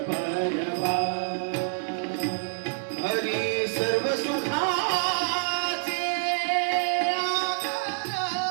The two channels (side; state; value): left; silent; 60 dB below the other